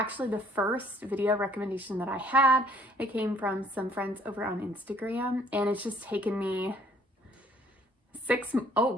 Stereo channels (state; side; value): normal; both; correlation 0.60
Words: the first video recommendation that I had. It came from some friends over on Instagram and it's just taken me 6